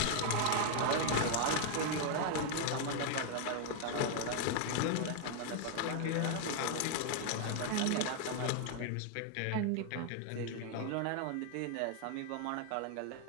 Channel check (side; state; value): both; different; correlation 0.00